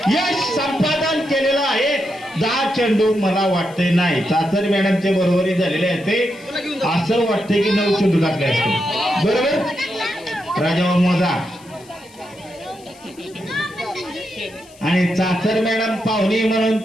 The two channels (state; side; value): noise; left; hiss, 25 dB below the sound